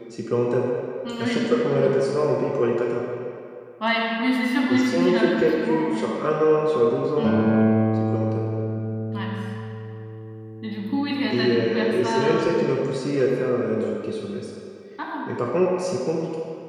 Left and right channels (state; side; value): identical; both; correlation 1.00